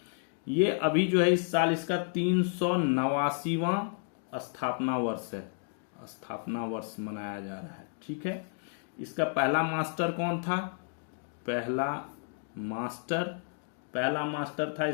ये अभी जो है इस साल इसका 389वां स्थापना वर्ष मनाया जा रहा है। ठीक है, इसका पहला मास्टर कौन था? पहला मास्टर था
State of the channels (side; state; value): right; silent; 57 dB below the other